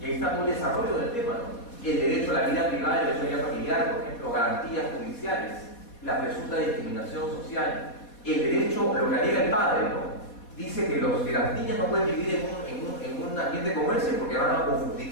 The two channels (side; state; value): right; late; 4.2 ms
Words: ahí está todo el desarrollo del tema, ¿no? El derecho a la vida privada, el derecho a la vida familiar, por ejemplo, garantías judiciales, la presunta discriminación social, el derecho, lo que alega el padre, ¿no? Dice que las niñas no pueden vivir en un ambiente como ese porque van a